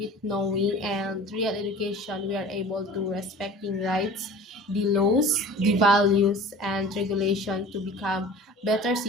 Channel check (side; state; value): both; normal; correlation 0.42